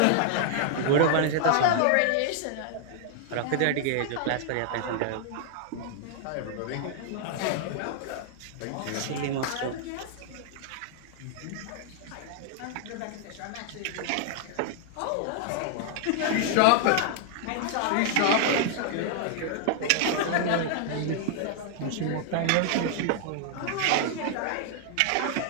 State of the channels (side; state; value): both; different; correlation 0.00